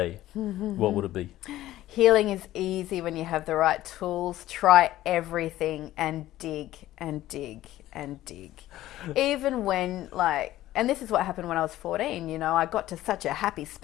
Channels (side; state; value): right; quieter; 14.7 dB